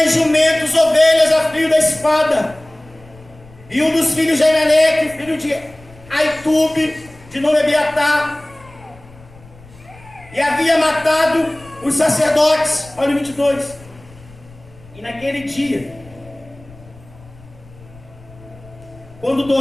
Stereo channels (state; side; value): noise; left; rumble, 23 dB below the sound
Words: jumentos, ovelhas a fio da espada. E um dos filhos de Emelec, filho de Aitube, de nome Abiatar, e havia matado os sacerdotes. Olha o 22. E naquele dia, quando